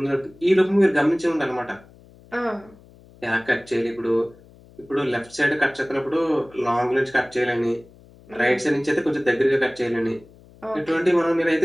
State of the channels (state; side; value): noise; left; hum, 25 dB below the sound